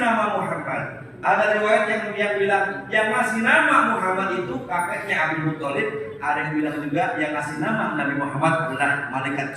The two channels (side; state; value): both; identical; correlation 1.00